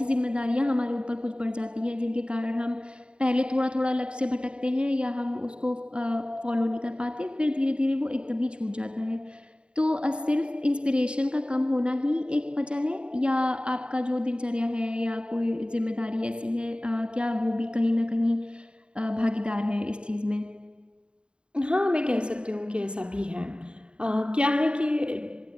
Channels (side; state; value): left; late; 0.053 ms